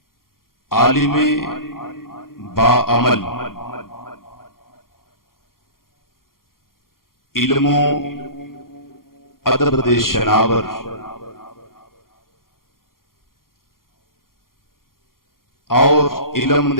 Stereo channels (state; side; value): late; right; 0.92 ms